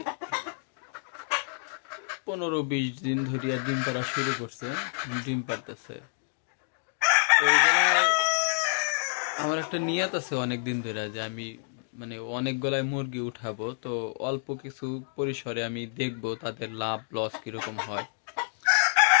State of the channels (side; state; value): right; silent; digital silence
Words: 15-20 দিন ধরিয়া ডিম পাড়া শুরু করছে, ডিম পাড়তেছে। তো এইগুলায় আমার একটা নিয়ত আছে অনেক দিন ধরে যে আমি অনেকগুলাই মুরগি উঠাবো, তো অল্প কিছু পরিসরে আমি দেখবো তাদের লাভ লস কিরকম হয়।